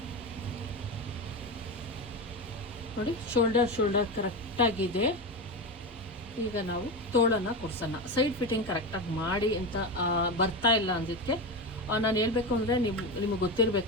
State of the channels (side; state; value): both; normal; correlation 0.19